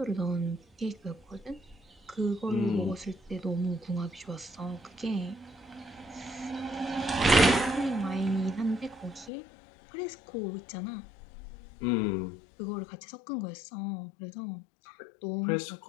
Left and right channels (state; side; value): drops out; right; at 9.3 s